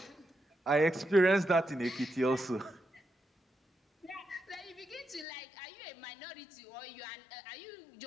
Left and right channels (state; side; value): drops out; right; at 5.2 s